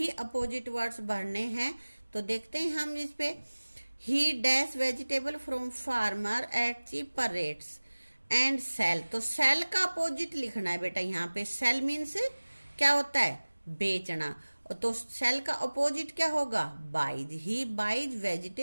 अपोजिट वर्ड्स भरने हैं। तो देखते हैं हम इस पे। He dash vegetable from farmer at cheaper rates and sell. तो सेल का अपोजिट लिखना है बेटा। यहाँ पे सेल मीन्स क्या होता है, बेचना। तो सेल का अपोजिट क्या होगा, buys. He buys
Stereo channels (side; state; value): both; inverted; correlation -1.00